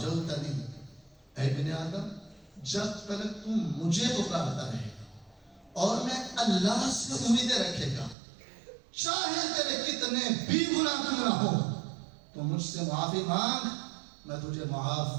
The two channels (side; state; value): left; drops out; at 8.2 s